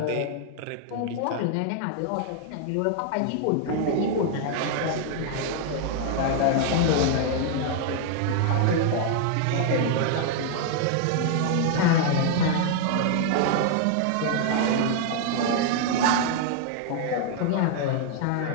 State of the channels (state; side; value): different; both; correlation 0.00